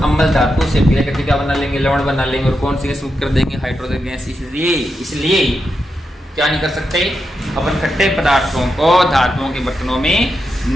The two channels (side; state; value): both; normal; correlation 0.86